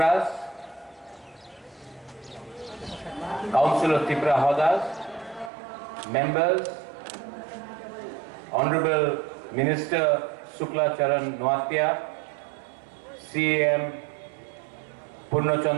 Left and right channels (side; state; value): left; drops out; at 5.5 s